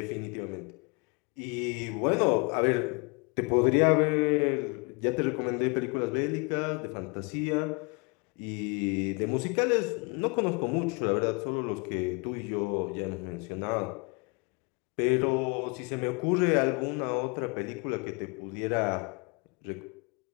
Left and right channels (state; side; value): quieter; right; 31.7 dB